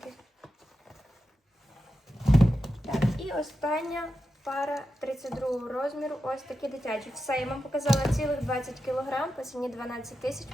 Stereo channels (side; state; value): both; normal; correlation 0.89